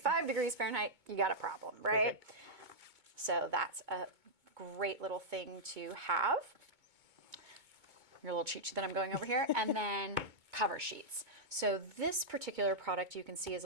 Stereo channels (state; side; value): late; left; 2.2 ms